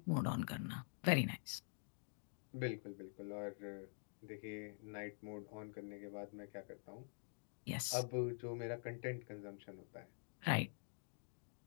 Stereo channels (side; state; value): right; silent; digital silence